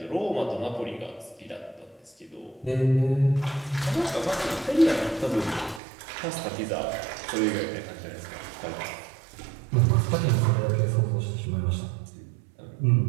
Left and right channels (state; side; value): drops out; left; at 5.8 s